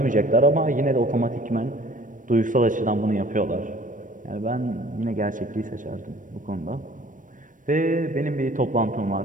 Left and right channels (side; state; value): left; late; 0.38 ms